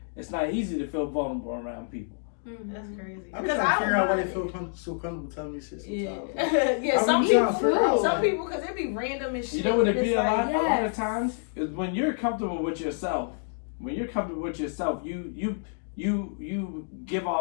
it's not easy to feel vulnerable around people. That's crazy. I'm Because trying to figure out why they feel. feel so comfortable telling me shit Yeah, sometimes. yeah. Some I'm trying to people, figure out, some like- people, because it be random and shit. You know what it and be it's a lot? like, A lot of yes. times is when you're comfortable with yourself. When you're comfortable with yourself, you give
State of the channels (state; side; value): silent; right; digital silence